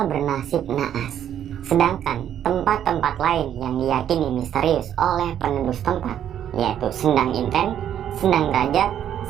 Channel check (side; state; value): left; quieter; 10.1 dB